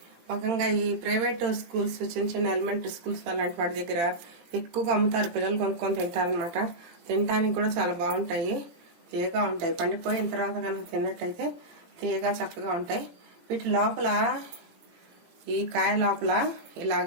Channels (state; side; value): late; left; 17 ms